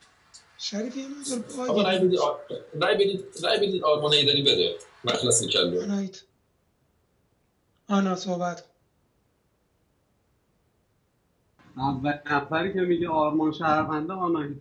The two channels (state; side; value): identical; both; correlation 1.00